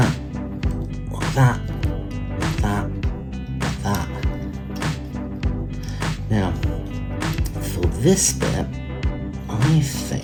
Like that. Like that. Like that. Now, for this bit, I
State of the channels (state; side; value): identical; both; correlation 1.00